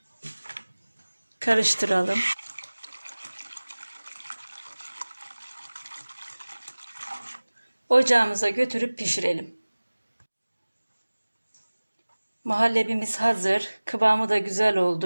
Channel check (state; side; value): inverted; both; correlation -1.00